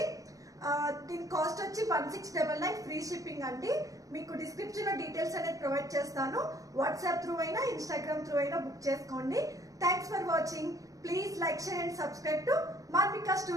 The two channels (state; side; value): late; left; 0.16 ms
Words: దీని కాస్ట్ వచ్చి 1699 ఫ్రీ షిప్పింగ్ అండి. మీకు డిస్క్రిప్షన్ లో డీటెయిల్స్ అనేది ప్రొవైడ్ చేస్తాను. వాట్సాప్ త్రూ అయినా ఇన్స్టాగ్రామ్ త్రూ అయినా బుక్ చేసుకోండి. Thanks for watching. Please like, share and subscribe to Manvika